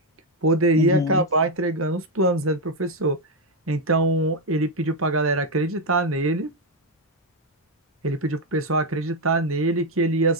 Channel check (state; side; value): normal; both; correlation 0.04